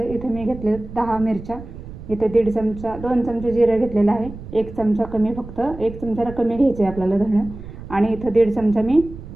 इथे मी घेतले 10 मिरच्या, इथे 1.5 चमचा 2 चमचे जिरं घेतलेलं आहे, 1 चमचा कमी, फक्त 1 चमचाला कमी घ्यायचे आहे आपल्याला धणं. आणि इथं 1.5 चमचा मी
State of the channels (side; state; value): right; noise; rumble, 13 dB below the sound